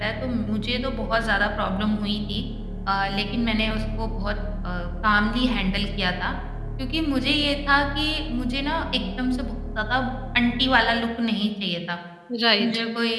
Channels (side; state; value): both; identical; correlation 1.00